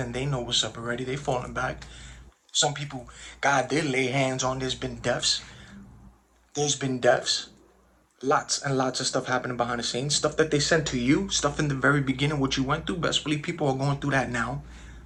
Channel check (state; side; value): identical; both; correlation 1.00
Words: they know what's up already. They falling back. Some people, God did lay hands on. There's been deaths. There's been deaths. Lots and lots of stuff happening behind the scenes. Stuff that they sent to you. Stuff in the very beginning, what you went through. Best believe people are going through that now.